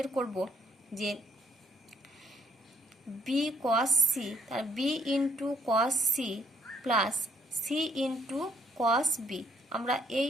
করব যে বি কস সি, তার B into cos C plus C into cos B. আমরা এই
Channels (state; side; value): normal; both; correlation 0.69